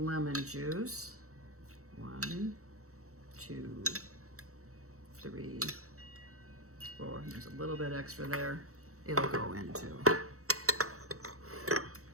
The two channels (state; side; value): late; left; 0.64 ms